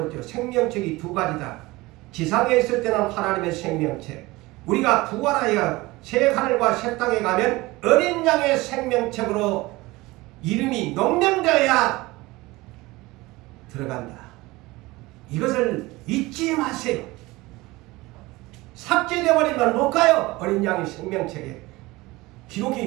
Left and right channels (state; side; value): quieter; left; 20.9 dB